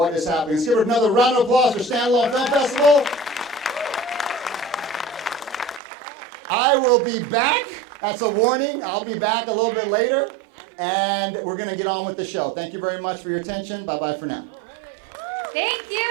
is happening. Let's give it another round of applause for Standalone Film Festival. I will be back. That's a warning. I'll be back a little bit later, and we're going to get on with the show. Thank you very much for your attention. Bye-bye for now.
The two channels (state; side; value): drops out; left; at 5.8 s